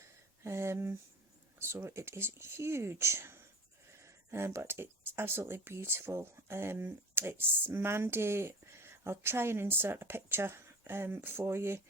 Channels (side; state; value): both; normal; correlation 0.35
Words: So it is huge, but it's absolutely beautiful. It's Mandy. I'll try and insert a picture for you,